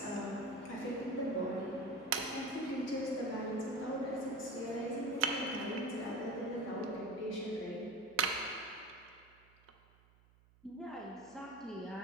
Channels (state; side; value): noise; right; hum, 28 dB below the sound